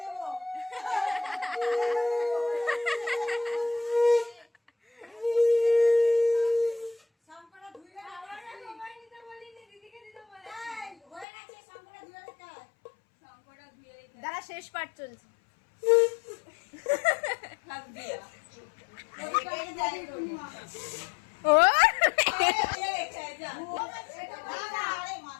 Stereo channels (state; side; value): drops out; right; at 11.2 s